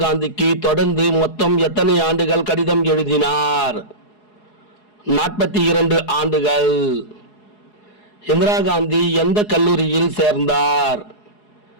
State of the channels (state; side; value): late; right; 4.8 ms